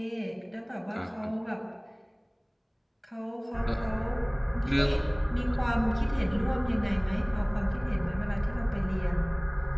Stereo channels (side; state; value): both; identical; correlation 1.00